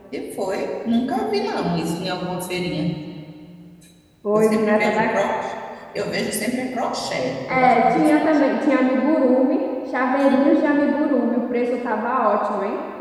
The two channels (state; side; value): identical; both; correlation 1.00